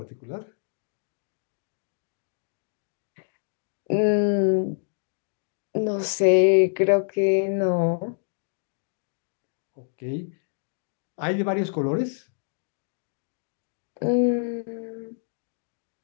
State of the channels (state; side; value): silent; right; digital silence